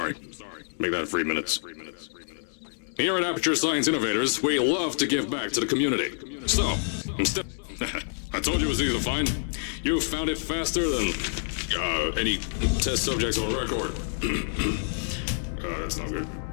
Make that 3 minutes. Here at Aperture Science Innovators, we love to give back to the community. So, instead... I told you it was easy to find. You found it faster than any test subjects on record. That's not good.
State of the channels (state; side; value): silent; right; digital silence